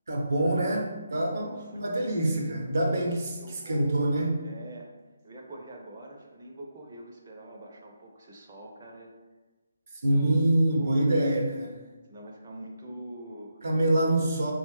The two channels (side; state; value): both; inverted; correlation -0.84